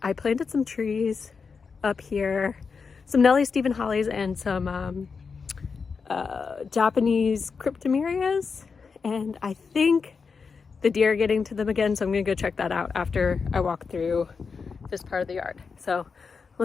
planted some trees up here, some Nellie Stephen hollies and some Japanese cryptomerias, and I think the deer are getting to them again, so I'm gonna go check that out after I walk through this part of the yard. So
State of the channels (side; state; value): right; quieter; 5.3 dB